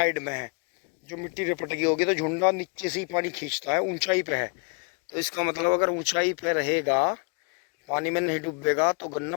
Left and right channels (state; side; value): quieter; right; 37.2 dB